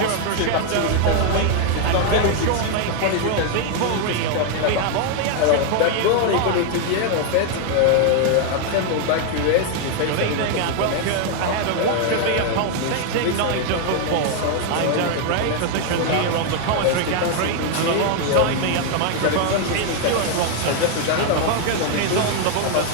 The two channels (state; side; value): different; both; correlation 0.00